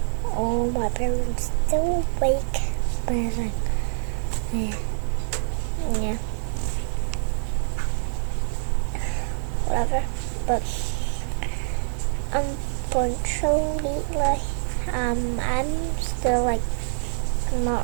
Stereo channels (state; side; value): silent; left; digital silence